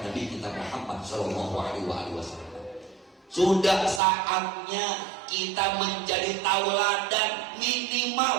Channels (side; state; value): left; drops out; at 4.0 s